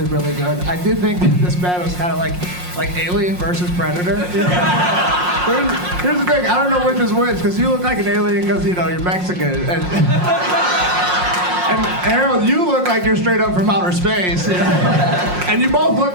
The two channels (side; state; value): left; late; 5.6 ms